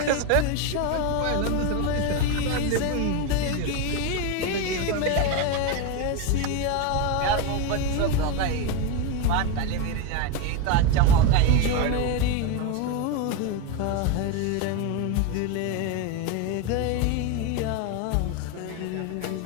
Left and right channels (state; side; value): different; both; correlation 0.03